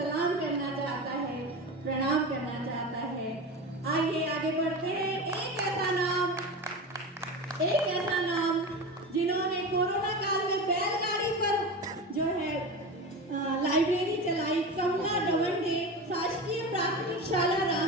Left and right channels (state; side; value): normal; both; correlation 0.26